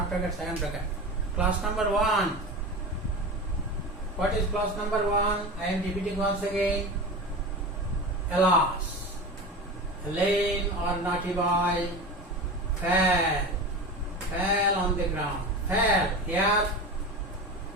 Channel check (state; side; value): normal; both; correlation 0.28